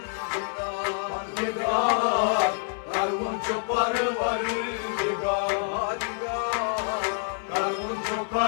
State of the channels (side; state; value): right; silent; digital silence